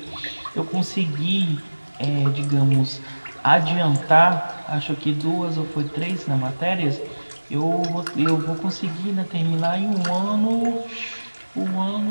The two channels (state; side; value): inverted; both; correlation -1.00